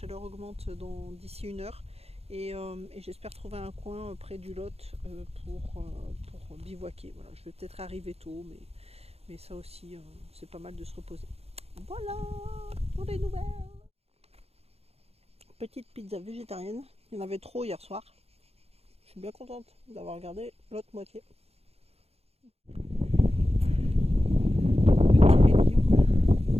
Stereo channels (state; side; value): late; left; 0.29 ms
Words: augmente d'ici 1 heure. Et j'espère trouver un coin près du Lot pour bivouaquer. Voilà, je vais peut-être arriver tôt, mais ça aussi c'est pas mal de se reposer. Voilà pour les nouvelles. Petite pizza végétarienne, il y en avait trop hier soir. Je suis bien contente d'avoir regardé l'autre moitié. Petit rayon.